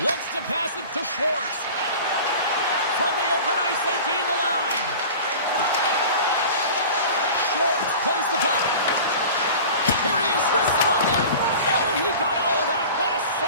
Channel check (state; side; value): inverted; both; correlation -0.38